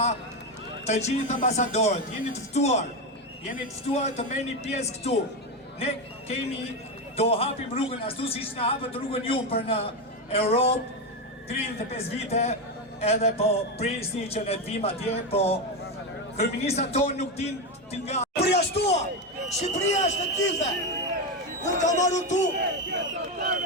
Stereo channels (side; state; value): both; normal; correlation 0.12